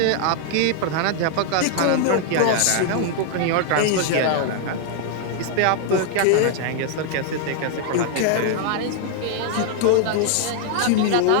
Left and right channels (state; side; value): different; both; correlation 0.00